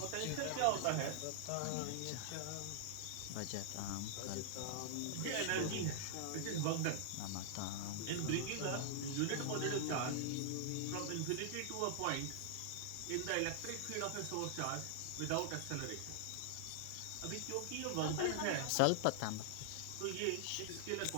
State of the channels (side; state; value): both; different; correlation -0.01